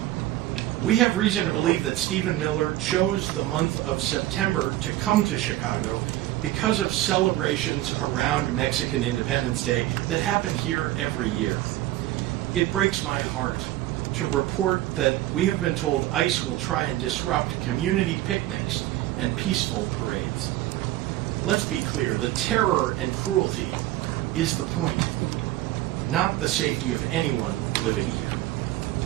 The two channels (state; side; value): quieter; left; 15.4 dB